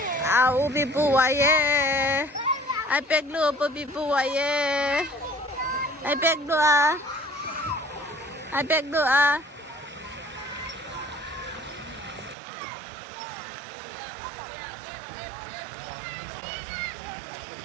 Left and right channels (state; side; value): drops out; left; at 12.4 s